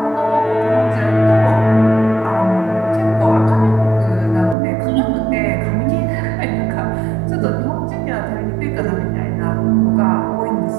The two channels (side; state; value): left; drops out; at 4.5 s